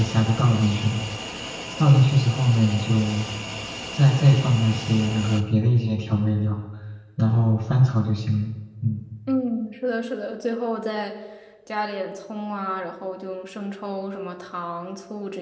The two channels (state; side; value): identical; both; correlation 1.00